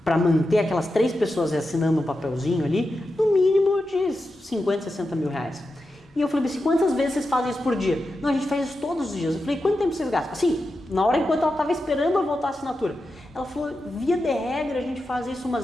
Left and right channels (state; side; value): normal; both; correlation 0.90